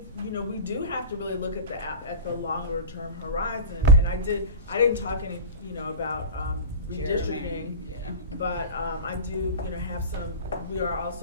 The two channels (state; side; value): inverted; both; correlation -0.32